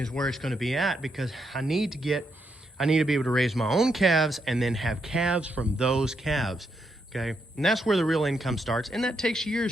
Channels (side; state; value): both; normal; correlation 0.80